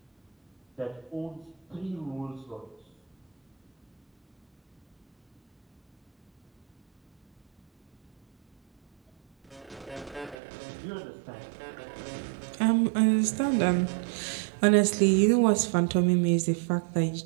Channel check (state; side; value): drops out; left; at 10.4 s